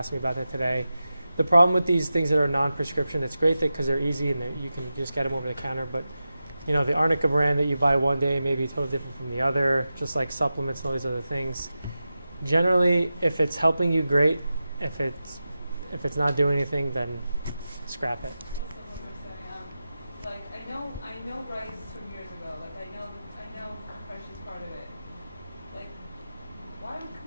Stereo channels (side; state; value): both; inverted; correlation -0.93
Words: me about that today. The problem with these things that are non-prescription, it's great because they're easy and you can just get them over the counter. But, you know, the arnica brand that you buy one day may be totally different from the other, just like supplements and all these other things. Generally, if it's helping you, great. If it's not doing anything, then scrap it. Also, like, I know rice from years ago. Like, I know compression's part of it. Like, why would